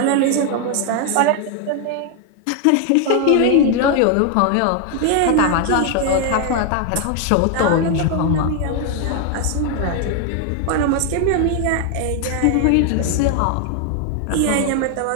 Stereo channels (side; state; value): both; different; correlation 0.00